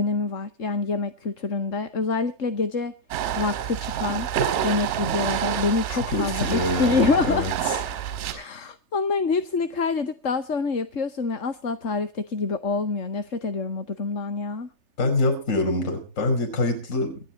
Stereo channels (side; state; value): right; late; 3.4 ms